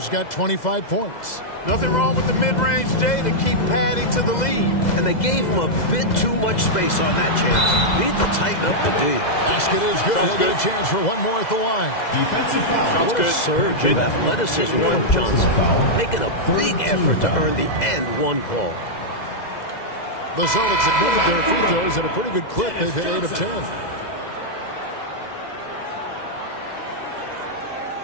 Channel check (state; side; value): late; right; 2.0 ms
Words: got 25 points. Nothing wrong with the mid-range, Jay, to keep padding to the lead. And they gave him a bit too much space on that chance. Need to tighten up the D. Basket is good. He'll get a chance for one more at the line. Defensive foul. What a surge of athleticism from Johnson. Making a big effort to earn the and one call. The Celtics have made their free throws at a pretty good clip. They've hit 8 of 10.